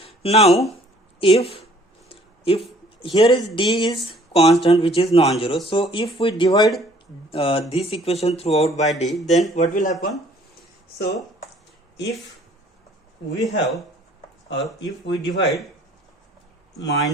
Now if here is d is constant which is non-zero, so if we divide this equation throughout by d, then what will happen? So if we have, or if we divide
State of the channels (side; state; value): both; normal; correlation 0.57